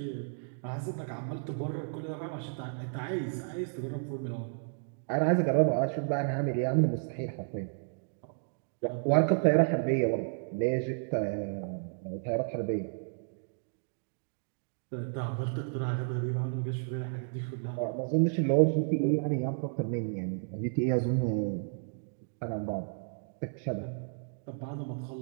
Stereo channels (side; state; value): left; silent; digital silence